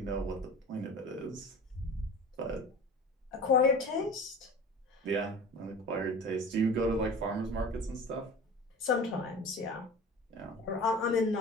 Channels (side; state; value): both; normal; correlation 0.38